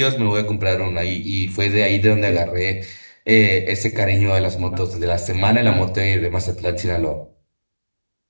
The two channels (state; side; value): inverted; both; correlation -1.00